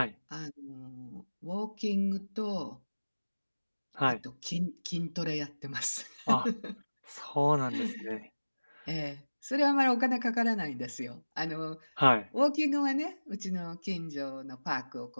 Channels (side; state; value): both; inverted; correlation -1.00